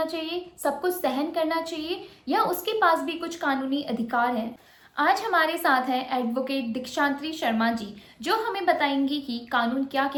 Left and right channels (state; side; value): identical; both; correlation 1.00